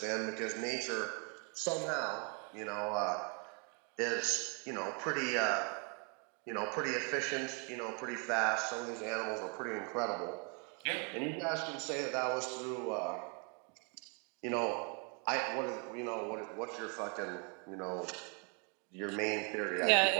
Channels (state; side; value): quieter; left; 36.3 dB